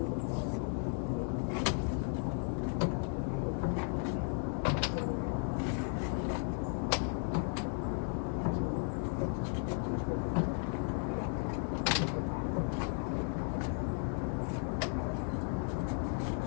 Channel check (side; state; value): right; silent; 54 dB below the other